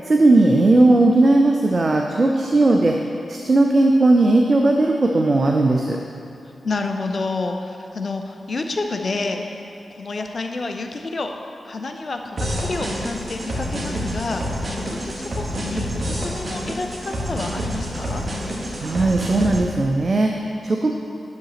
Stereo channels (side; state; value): both; normal; correlation 0.91